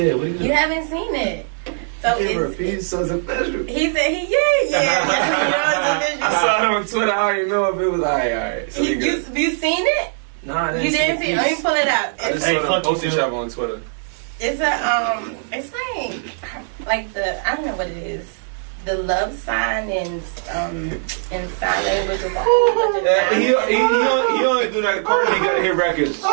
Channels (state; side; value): silent; left; digital silence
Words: it. What you haven't seen it. So it's so official. He said I saw it on Twitter. I don't even know if it was alright. So you seen it? No, I didn't. You didn't see it? Let me pull it up. I just saw them post each other on Twitter. It's it's like the, I don't know what it is. The love sign in sign language. He only do that. Cardi B got to hit records.